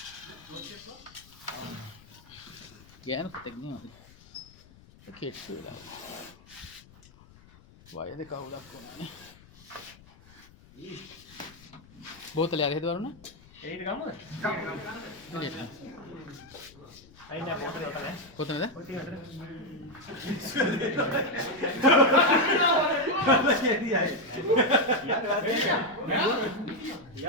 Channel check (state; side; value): noise; left; rumble, 24 dB below the sound